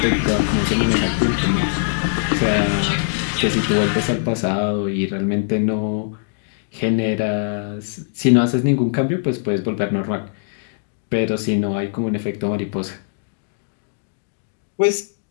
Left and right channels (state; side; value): silent; right; digital silence